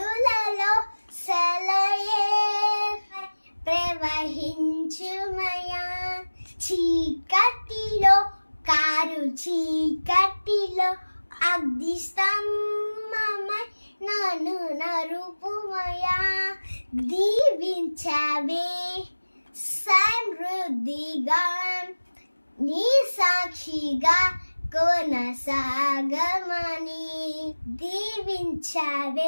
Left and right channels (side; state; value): both; inverted; correlation -1.00